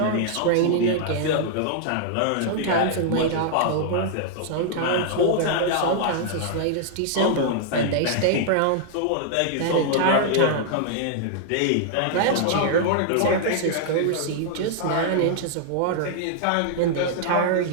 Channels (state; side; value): different; both; correlation -0.01